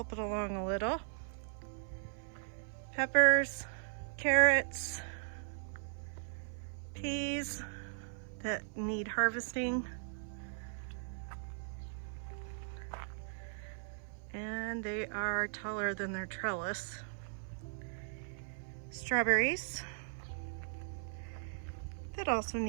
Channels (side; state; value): left; silent; 52 dB below the other